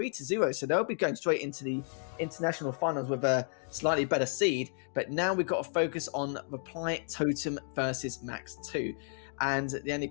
So they'll be going straight into the international finals with a slightly better seed. But now we've got to focus on Reply Totem versus Max 2. And the only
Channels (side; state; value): right; silent; 56 dB below the other